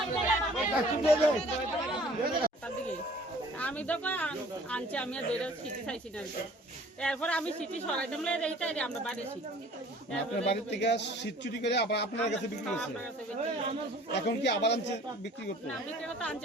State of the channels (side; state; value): both; normal; correlation 0.51